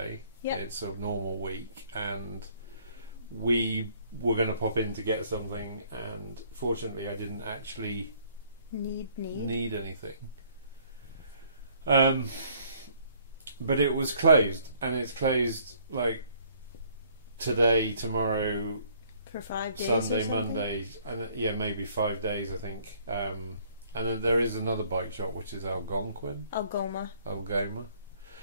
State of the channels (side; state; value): both; inverted; correlation -0.61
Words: Yep. It's a normal week. And we were going to pop in to get something. And fortunately I didn't actually need anything. But it was closed. And it's closed like today, tomorrow, For 5 days. Sunday, or something? Monday, and yeah, maybe 5 days, I think. And then there is another bike shop, which is Algonquin. Algoma.